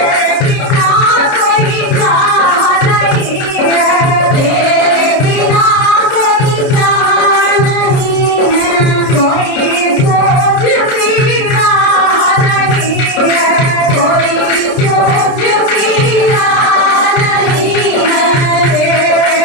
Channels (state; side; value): late; right; 30 ms